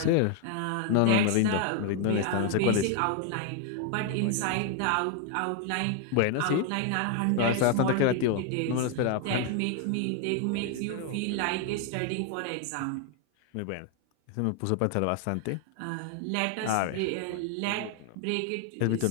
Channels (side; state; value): both; different; correlation 0.01